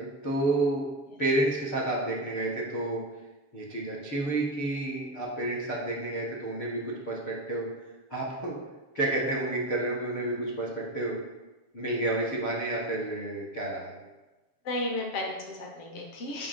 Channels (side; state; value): right; late; 7.1 ms